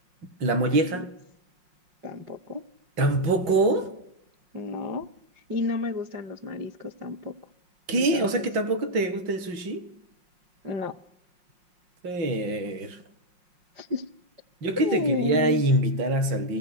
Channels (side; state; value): left; late; 5.5 ms